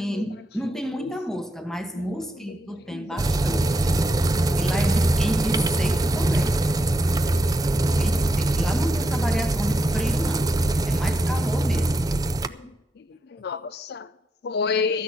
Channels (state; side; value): normal; both; correlation 0.81